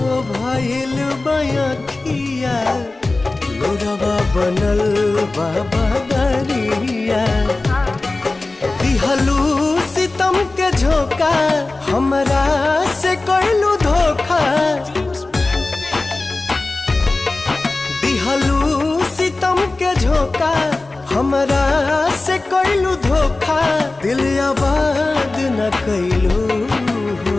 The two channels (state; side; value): quieter; right; 3.2 dB